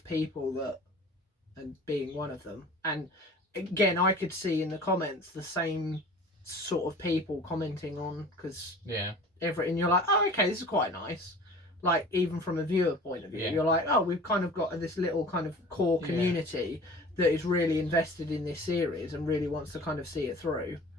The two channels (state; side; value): normal; both; correlation 0.42